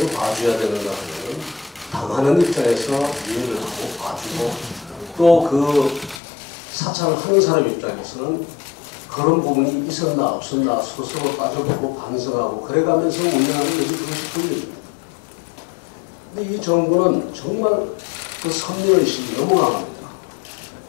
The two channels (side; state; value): right; drops out; at 6.2 s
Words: 봐줘야 되는가 하면 당하는 입장에서 이해를 하고 봐주고 또 그 사찰을 하는 사람 입장에서는 그런 부분이 있었나 없었나 스스로 따져보고 반성하고 그래가면서 운영하는 것이 그것이 권력입니다. 근데 이 정부는 정말 그 선민의식이 너무 강합니다.